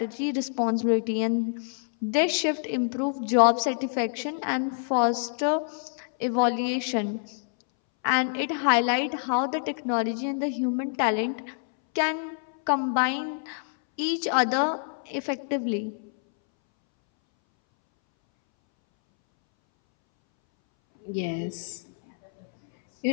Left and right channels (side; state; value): right; silent; 60 dB below the other